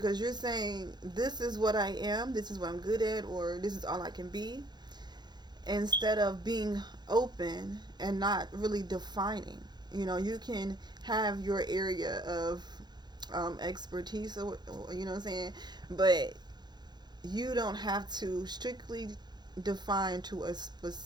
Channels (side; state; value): left; late; 0.21 ms